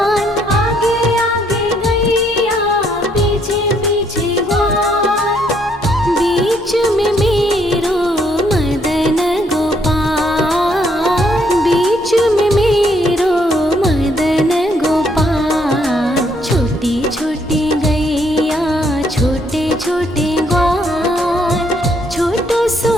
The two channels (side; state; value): both; normal; correlation 0.70